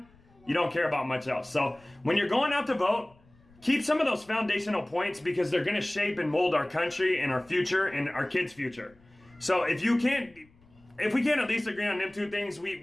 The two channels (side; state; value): left; noise; rumble, 29 dB below the sound